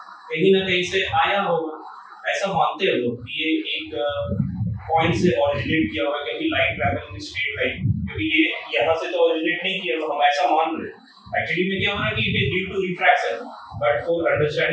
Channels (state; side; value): identical; both; correlation 1.00